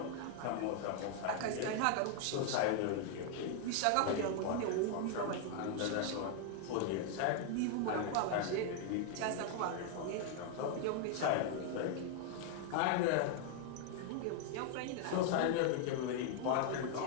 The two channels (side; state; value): both; different; correlation 0.00